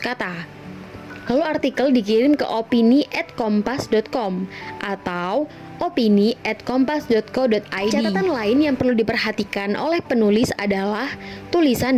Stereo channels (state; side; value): identical; both; correlation 1.00